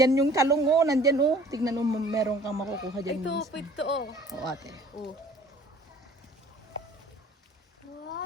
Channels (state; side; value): normal; both; correlation 0.51